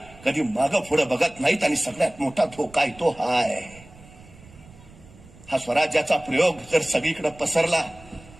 कधी मागं पुढं बघत नाहीत. आणि सगळ्यात मोठा धोका आहे तो हाय. हा स्वराज्याचा प्रयोग जर सगळीकडे पसरला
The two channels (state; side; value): noise; right; rumble, 22 dB below the sound